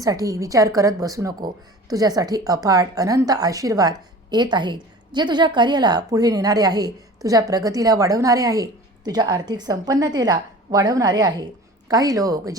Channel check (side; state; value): both; normal; correlation 0.41